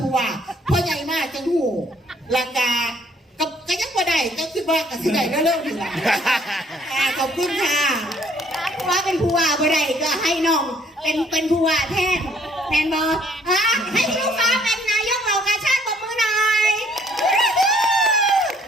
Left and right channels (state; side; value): normal; both; correlation 0.62